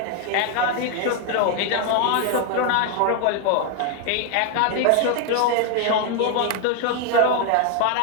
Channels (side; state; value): both; different; correlation 0.01